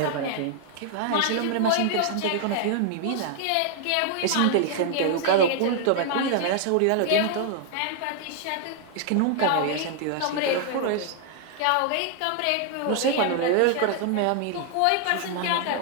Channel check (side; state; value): both; different; correlation 0.00